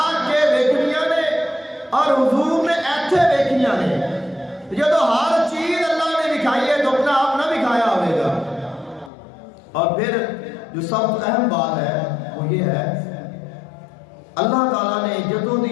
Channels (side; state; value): right; drops out; at 9.1 s